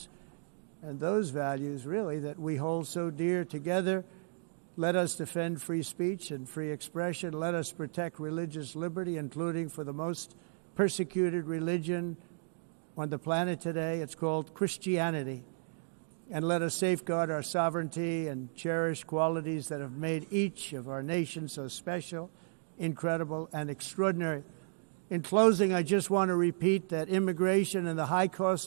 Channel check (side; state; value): left; silent; digital silence